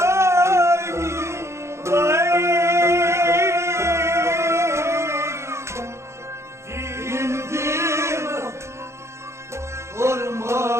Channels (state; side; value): late; left; 0.13 ms